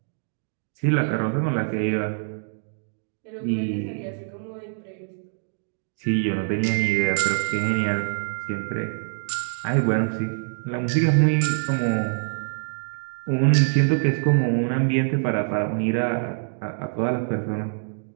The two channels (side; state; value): left; silent; digital silence